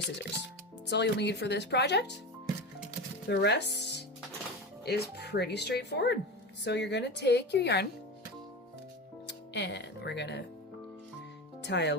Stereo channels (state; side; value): normal; both; correlation 0.25